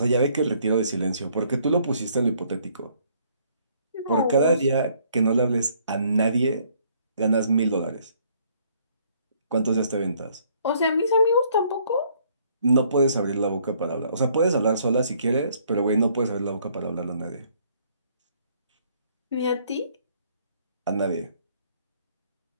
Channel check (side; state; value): both; inverted; correlation -0.64